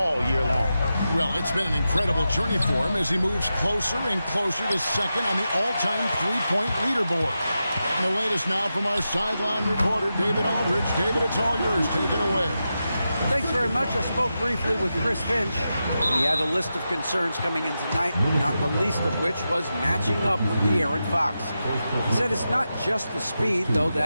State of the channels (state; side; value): inverted; both; correlation -0.90